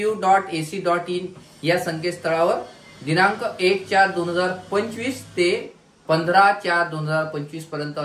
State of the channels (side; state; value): both; identical; correlation 1.00